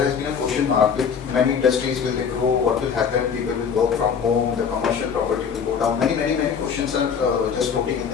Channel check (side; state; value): right; quieter; 6.7 dB